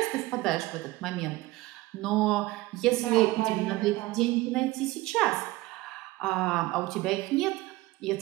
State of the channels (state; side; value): quieter; left; 19.2 dB